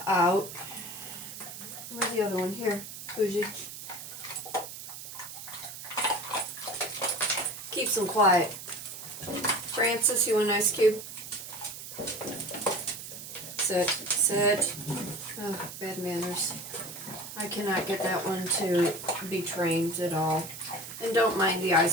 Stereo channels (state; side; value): noise; right; hiss, 11 dB below the sound